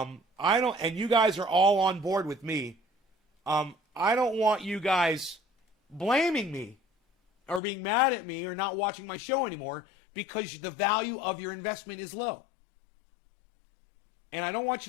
don't, and you guys are all on board with me, I don't want you guys blaming me or being mad at me or not watching my show anymore because the value of your investment is low. And I don't want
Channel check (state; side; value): drops out; right; at 7.6 s